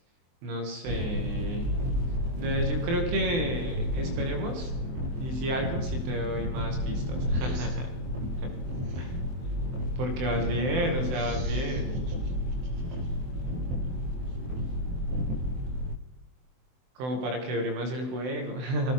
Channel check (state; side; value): late; left; 23 ms